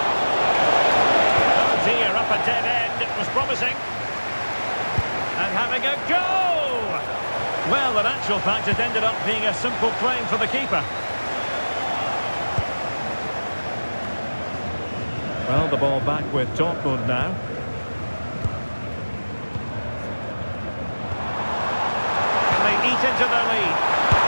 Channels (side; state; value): both; inverted; correlation -1.00